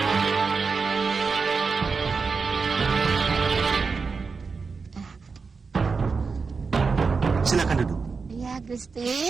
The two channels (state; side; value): quieter; left; 4.9 dB